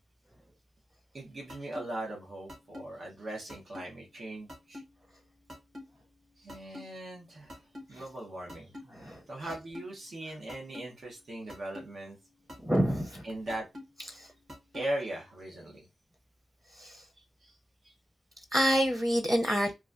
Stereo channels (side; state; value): both; normal; correlation 0.91